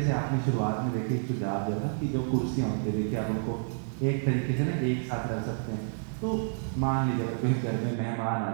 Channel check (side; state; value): left; silent; digital silence